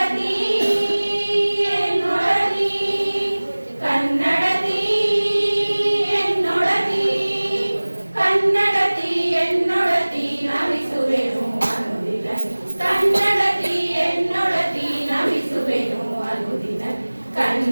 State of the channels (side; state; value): both; inverted; correlation -1.00